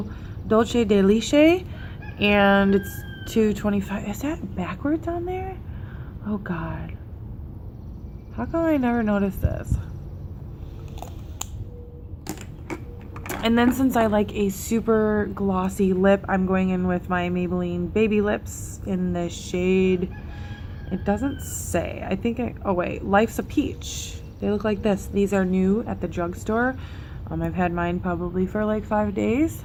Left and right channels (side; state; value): both; identical; correlation 1.00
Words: Dolce de Leche, and it's $2.25. Is that backwards on there? Oh God, how come I never noticed this? And then since I like a super glossy lip, I'm going in with my Maybelline Baby Lips in the shade, it doesn't say, I think oh wait, Life's a Peach. They look like this. These are new at the drugstore. I've had mine probably for like 5 days.